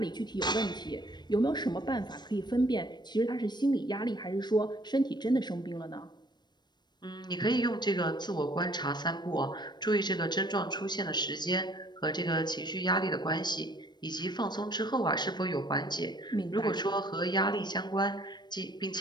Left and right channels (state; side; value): late; right; 0.21 ms